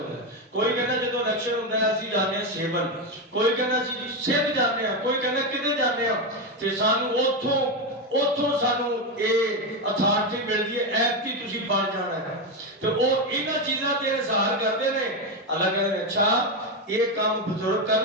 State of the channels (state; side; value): normal; both; correlation 0.10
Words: ہے۔ کوئی کہنا جدوں الیکشن ہوندا ہے اسی جانے ہیں سیون، کوئی کہنا اسی سندھ جانے ہیں، کوئی کہنا کدھر جانے ہیں، تے سانو اوتھوں سانو اے اتھارٹی ملدی ہے ایپ کی تسی بن جانا ہے۔ تو وہ انہاں چیزاں تے اظہار کرتے ہیں۔ اللہ کہتے ہیں اچھا یہ کام بزرگ کر